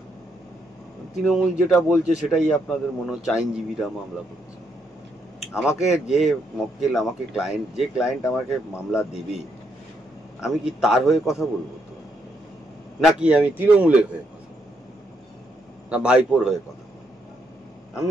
তৃণমূল যেটা বলছে সেটাই আপনাদের মনে হচ্ছে আইনজীবীরা মামলা করছে। আমাকে যে মক্কেল, আমাকে ক্লায়েন্ট, যে ক্লায়েন্ট আমাকে মামলা দেবে, আমি কি তার হয়ে কথা বলবো তো? নাকি আমি তৃণমূলের হয়ে কথা বলবো, না ভাইপোর হয়ে কথা বলবো?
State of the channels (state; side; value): normal; both; correlation 0.76